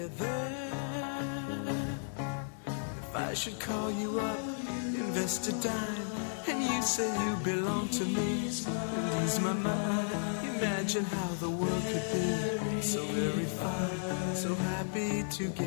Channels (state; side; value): silent; right; digital silence